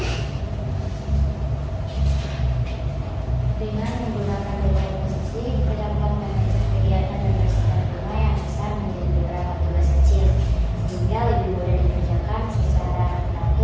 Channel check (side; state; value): both; identical; correlation 1.00